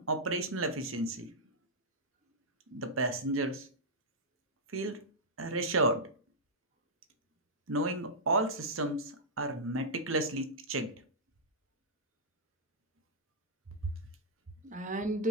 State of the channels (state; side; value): normal; both; correlation -0.09